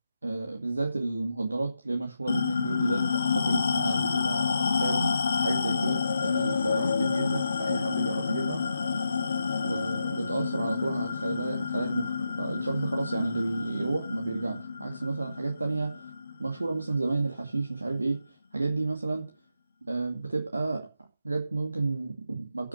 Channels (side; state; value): both; inverted; correlation -0.85